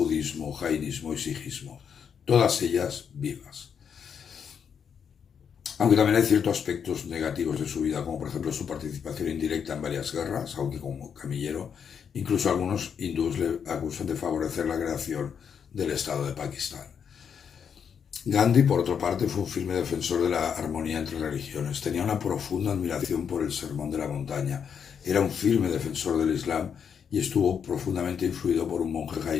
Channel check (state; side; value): quieter; right; 7.3 dB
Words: jainismo y sijismo, todas ellas vivas. Aunque también hay ciertos aspectos negativos de su vida, como por ejemplo su participación indirecta en varias guerras, aunque como camillero, incluso algunos hindúes le acusan de favorecer la creación del Estado de Pakistán. Gandhi, por otra parte, fue un firme defensor de la armonía entre religiones. Tenía una profunda admiración por el Sermón de la Montaña. Era un firme defensor del Islam y estuvo profundamente influido por un monje